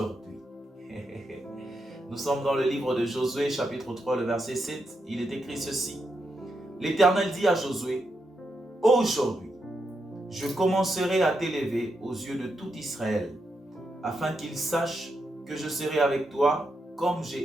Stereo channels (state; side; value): normal; both; correlation 0.84